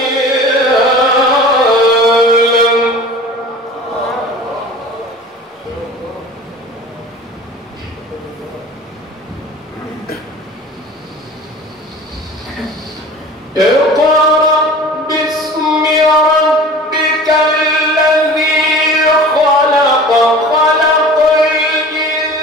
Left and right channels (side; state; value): both; normal; correlation 0.41